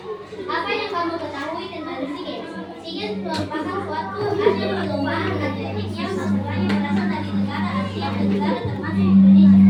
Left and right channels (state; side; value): identical; both; correlation 1.00